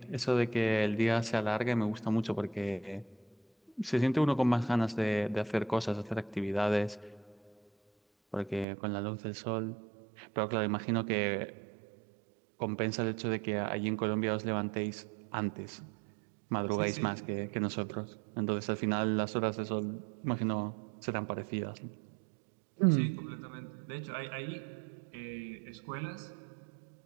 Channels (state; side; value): drops out; left; at 8.7 s